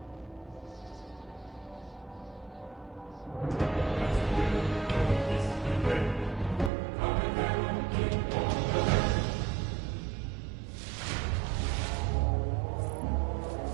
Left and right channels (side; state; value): left; drops out; at 6.7 s